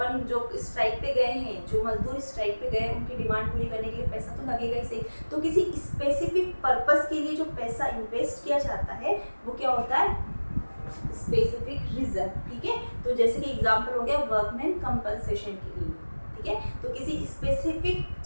जो स्ट्राइक पे गए हैं, जो मजदूर स्ट्राइक पे गए, उनकी डिमांड पूरी करने के लिए पैसा तो लगेगा ही सही। तो किसी स्पेसिफिक पर्पस के लिए जो पैसा इन्वेस्ट किया जाता है वो क्या होता है, स्पेसिफिक रिजर्व। ठीक है, तो जैसे कि एग्जांपल हो गया वर्कमैन कंपनसेशन के लिए। ठीक है, तो किसी स्पेसिफिक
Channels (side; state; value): both; inverted; correlation -1.00